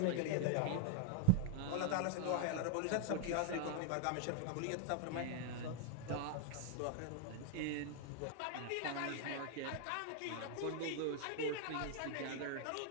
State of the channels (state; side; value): different; both; correlation 0.00